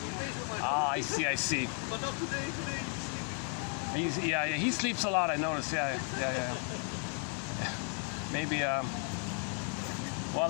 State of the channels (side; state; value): right; quieter; 39.4 dB